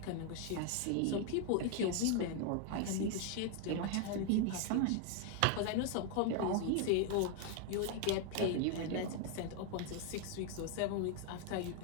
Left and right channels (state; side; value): different; both; correlation 0.00